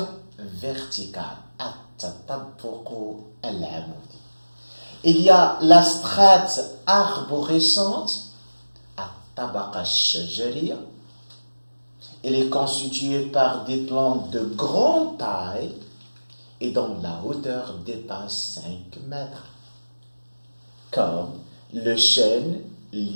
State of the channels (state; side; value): inverted; both; correlation -1.00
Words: verticale. التطبق العمودي. Il y a la strate arborescente, الطبقة الشجرية. Elle est constituée par des plantes de grande taille et dont la hauteur dépasse 5 mètres, comme le chêne